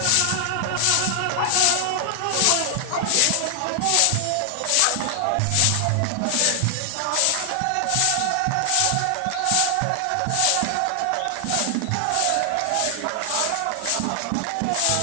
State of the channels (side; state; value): both; different; correlation 0.00